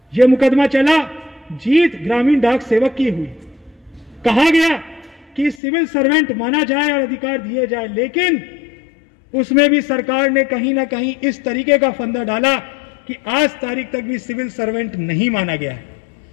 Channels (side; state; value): right; drops out; at 5.6 s